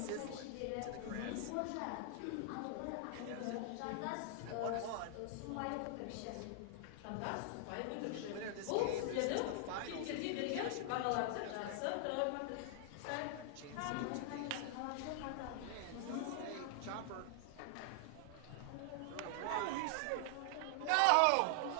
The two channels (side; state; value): both; different; correlation 0.00